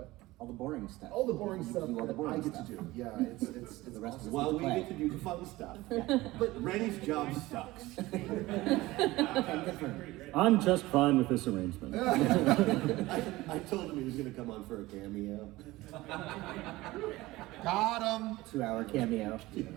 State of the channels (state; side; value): quieter; left; 18.9 dB